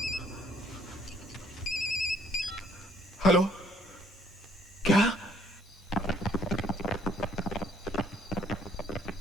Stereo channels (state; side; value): normal; both; correlation 0.64